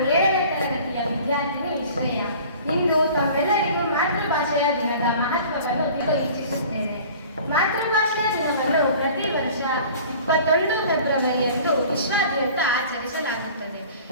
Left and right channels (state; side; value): inverted; both; correlation -0.45